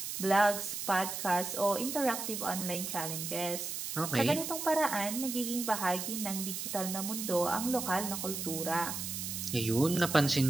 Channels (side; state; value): right; noise; hiss, 5 dB below the sound